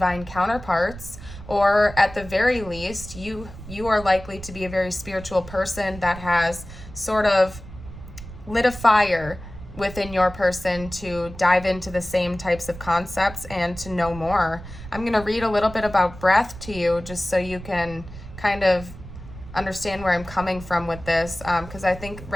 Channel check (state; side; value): noise; right; rumble, 14 dB below the sound